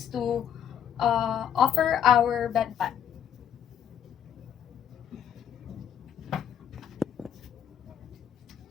to offer our bedpan.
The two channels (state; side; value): quieter; right; 9.2 dB